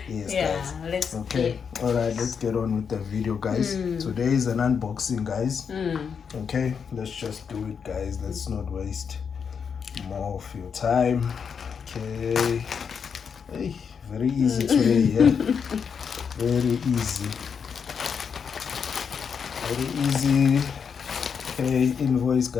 Yes, guys. Let's all right, let's get on with the video, guys. Today is an unboxing, guys. Okay, let's just do it, guys. Let's not waste more of your time. Okay. Hey, very easy today, yeah. Very easy. Okay, invoice,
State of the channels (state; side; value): quieter; right; 6.6 dB